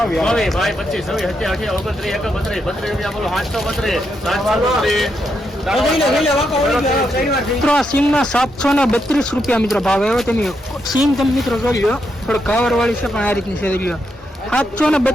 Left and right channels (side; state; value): both; normal; correlation 0.81